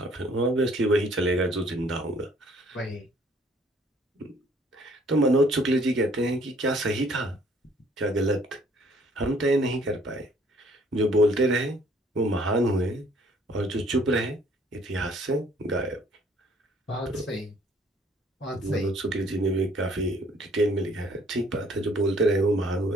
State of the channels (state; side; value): normal; both; correlation 0.60